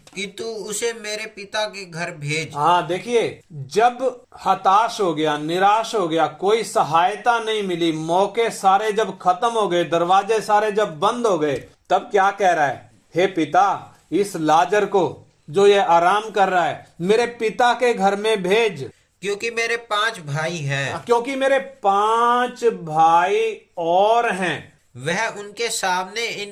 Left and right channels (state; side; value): identical; both; correlation 1.00